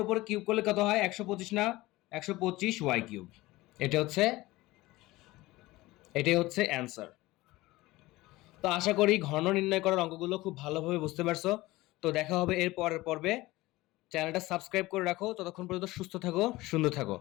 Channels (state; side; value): quieter; right; 19.2 dB